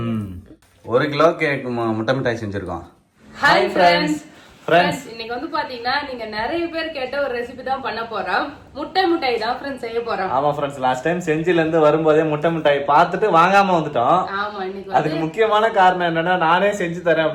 1 கிலோக்கு முட்டை மிட்டாய் செஞ்சிருக்கோம். Hi friends. இன்னைக்கு வந்து பாத்தீங்கன்னா நீங்க நிறைய பேர் கேட்ட ஒரு ரெசிபி தான் பண்ண போறோம். முட்டை மிட்டாய் தான் ஃப்ரெண்ட்ஸ் செய்ய போறோம். ஆமா ஃப்ரெண்ட்ஸ், லாஸ்ட் டைம் செஞ்சில இருந்து வரும்போதே முட்டை மிட்டாய் பார்த்துட்டு வாங்காம வந்துட்டோம். ஆமா, இன்னைக்கு அதுக்கு முக்கியமான காரணம் என்னன்னா நானே செஞ்சு தரேன்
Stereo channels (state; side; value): identical; both; correlation 1.00